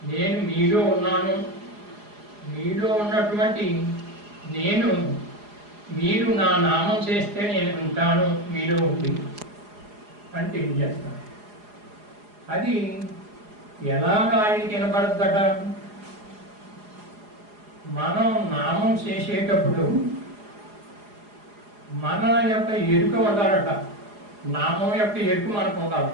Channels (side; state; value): left; late; 4.8 ms